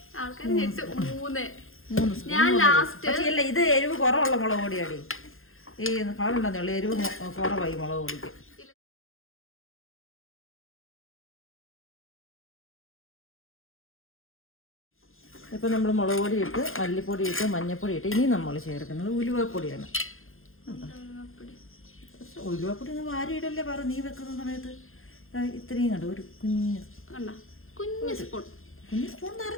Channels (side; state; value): right; late; 0.60 ms